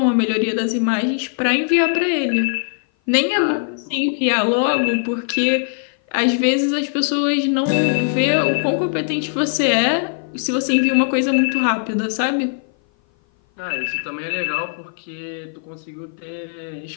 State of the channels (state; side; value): silent; right; 57 dB below the other